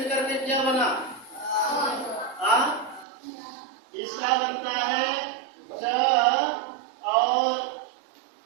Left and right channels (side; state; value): left; drops out; at 3.1 s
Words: के क्या बना? इसका बनता है च और